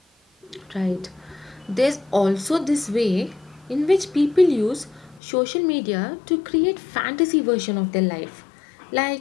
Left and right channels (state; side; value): drops out; right; at 5.2 s